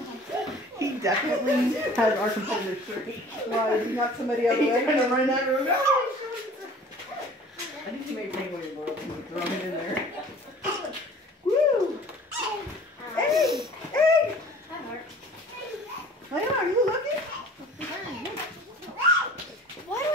He definitely has our competitor's shirt. Why, did he knock somebody out of the way? He's going to run out of the room. I think he made penguin in the world and throw him in there. Woo! Hey! Hey! Layla, are you looking? Why do I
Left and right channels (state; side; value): normal; both; correlation 0.47